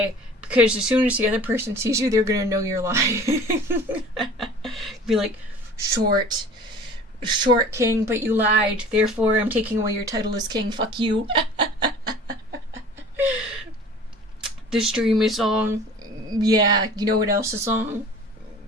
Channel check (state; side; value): normal; both; correlation 0.44